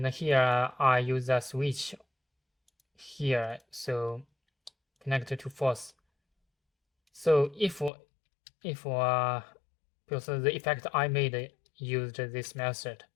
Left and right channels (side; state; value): right; drops out; at 7.9 s